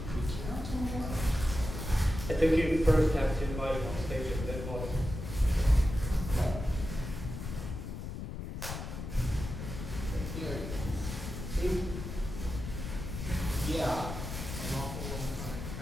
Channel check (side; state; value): left; noise; rumble, 7 dB below the sound